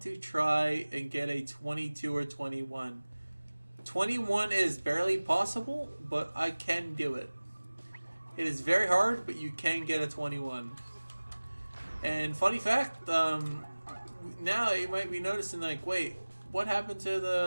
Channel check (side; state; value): both; inverted; correlation -1.00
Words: to try and get a 22 or 21. 21 is barely possible, but I can do it. It is very hard, but you can get a 21. And funny fact, now you might be noticing, like, wait, what happened to